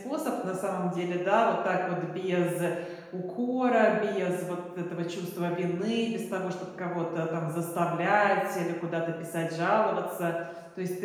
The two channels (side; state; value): both; identical; correlation 1.00